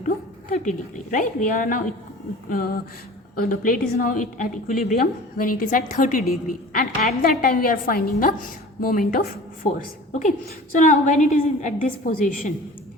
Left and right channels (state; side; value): normal; both; correlation 0.41